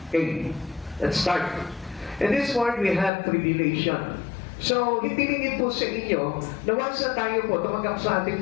Okay, let's start. In this world, we have tribulation. So, hitilingin po sa inyo na once na tayo po tumanggap sa ating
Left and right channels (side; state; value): right; drops out; at 3.1 s